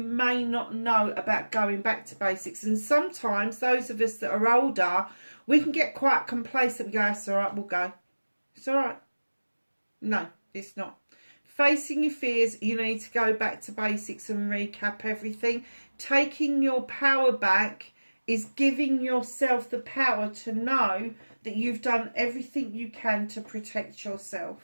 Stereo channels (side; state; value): both; inverted; correlation -1.00